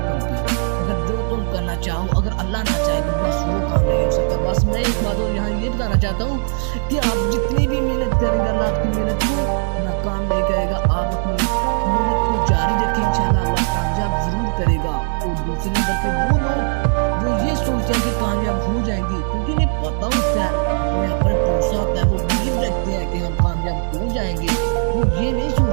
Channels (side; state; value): left; silent; 63 dB below the other